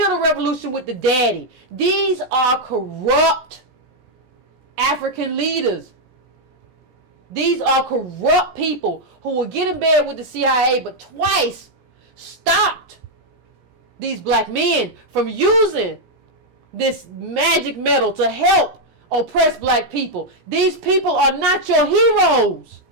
the revolution with the daddy. These are corrupt African leaders. These are corrupt people who will get in bed with the CIA, but twice stopped these black men from using this magic metal to help oppress black people. These people are not your heroes.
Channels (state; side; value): late; left; 17 ms